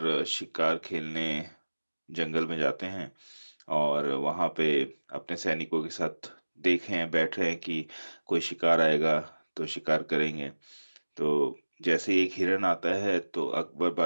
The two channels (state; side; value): inverted; both; correlation -1.00